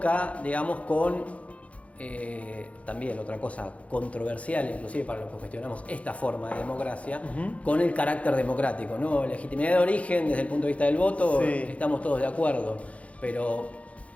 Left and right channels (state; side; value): late; right; 0.065 ms